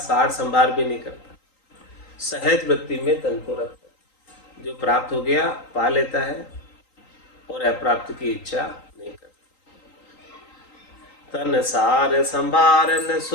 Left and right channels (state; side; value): late; right; 3.8 ms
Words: संभार भी नहीं करता, सहज वृत्ति में तन को रखता है। जो प्राप्त हो गया पा लेता है और अप्राप्त की इच्छा नहीं करता। तन सार संभारन